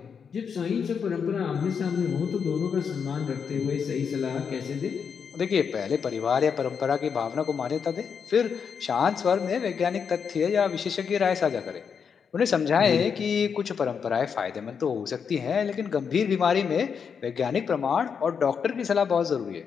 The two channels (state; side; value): quieter; right; 6.6 dB